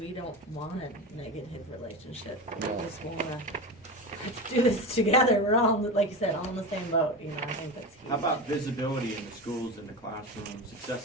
don't want a negative relationship. We just wanna, let's do this together, we're all, like you said, all in the same boat, you know, I think that's huge. How about visibility in the schools, in the classrooms,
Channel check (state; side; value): normal; both; correlation 0.24